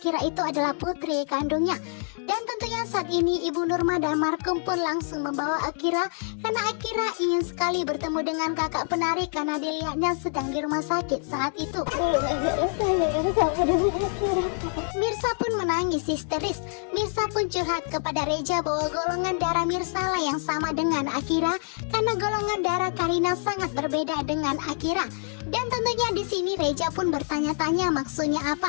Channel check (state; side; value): silent; right; 56 dB below the other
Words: itu adalah putri kandungnya. Dan tentunya saat ini Ibu Nurma dan Markum pun langsung membawa Akira karena Akira ingin sekali bertemu dengan kakak penari karena dilihatnya sedang di rumah sakit saat itu. Mirsa pun menangis histeris. Mirsa pun curhat kepada Reja bahwa golongan darah Mirsa lah yang sama dengan Akira karena golongan darah Karina sangat berbeda dengan Akira. Dan tentunya di sini Reja pun bertanya-tanya maksudnya